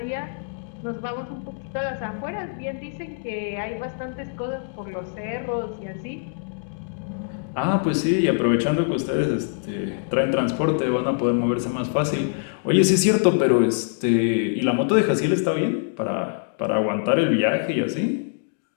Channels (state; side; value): silent; right; digital silence